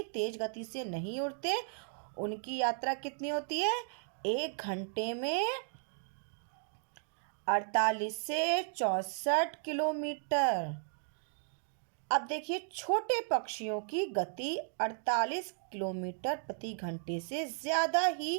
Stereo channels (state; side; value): silent; left; digital silence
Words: तेज गति से नहीं उड़ते। उनकी यात्रा कितनी होती है? 1 घंटे में 48 से 64 किलोमीटर। अब देखिए, छोटे पक्षियों की गति 48 किलोमीटर प्रति घंटे से ज़्यादा ही